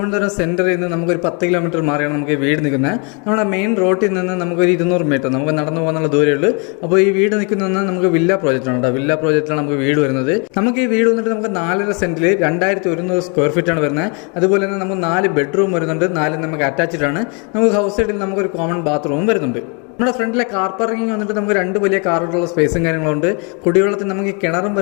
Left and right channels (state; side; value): quieter; right; 34.8 dB